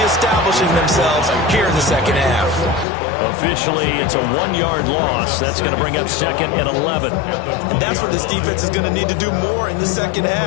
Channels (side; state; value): right; drops out; at 2.9 s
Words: establishing themselves here in the 2nd half. Officially, it's a 1-yard loss. That's going to bring up 2nd and 11. And that's what this defense is going to need to do more in the 2nd